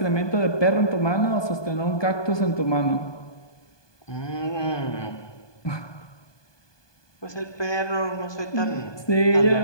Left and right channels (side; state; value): right; late; 1.2 ms